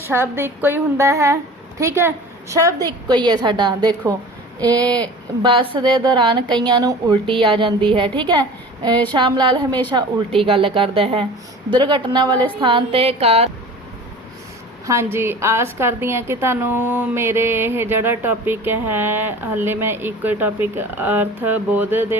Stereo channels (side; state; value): both; normal; correlation 0.40